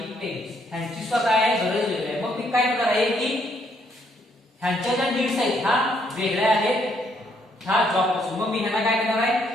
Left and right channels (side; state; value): both; normal; correlation 0.71